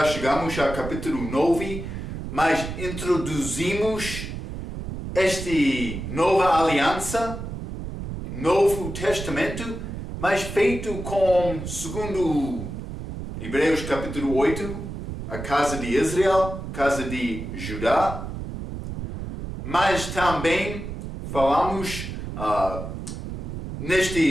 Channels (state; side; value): noise; right; rumble, 7 dB below the sound